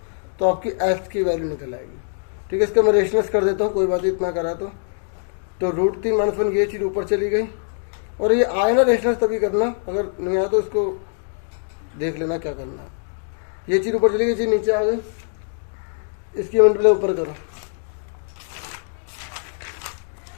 तो आपकी h की वैल्यू निकल आएगी, ठीक है। इसका मैं रेशनलाइज कर देता हूँ, कोई बात इतना करा तो √3 माइनस 1 ये चीज़ ऊपर चली गई। और ये आए ना रेशनलाइज तभी करना, अगर नहीं आया तो इसको देख लेना क्या करना है। ये चीज़ ऊपर चली गई, ये चीज़ नीचे आ गई, इसकी मल्टीप्लाई ऊपर करो।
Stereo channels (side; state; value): right; silent; 64 dB below the other